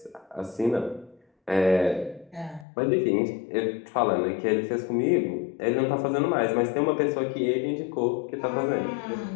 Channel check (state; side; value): drops out; right; at 2.7 s